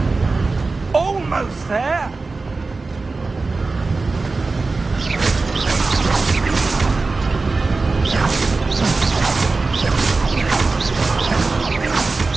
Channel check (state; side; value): quieter; left; 3.8 dB